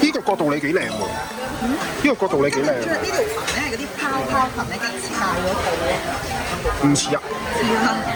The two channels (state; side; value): identical; both; correlation 1.00